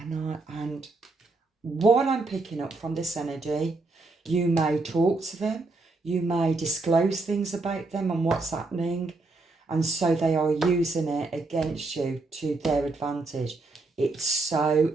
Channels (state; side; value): quieter; left; 3.4 dB